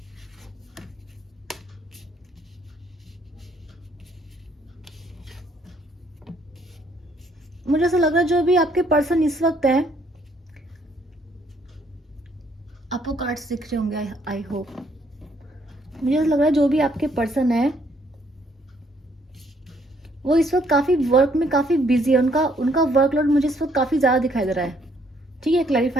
मुझे ऐसा लग रहा है जो भी आपके पर्सन इस वक्त है, आपको कार्ड्स दिख रहे होंगे। I hope. मुझे ऐसा लग रहा है जो भी आपके पर्सन है वो इस वक्त काफी वर्क में काफी बिजी है। उनका उनका वर्कलोड मुझे इस वक्त काफी ज्यादा दिखाई दे रहा है। ठीक है,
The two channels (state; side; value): normal; both; correlation 0.67